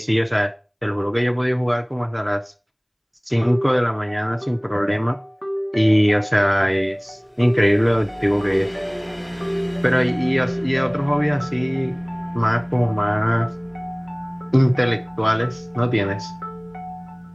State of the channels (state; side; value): identical; both; correlation 1.00